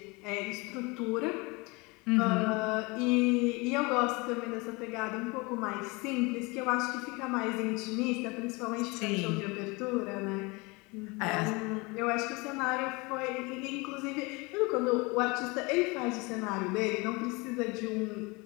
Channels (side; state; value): right; quieter; 26.3 dB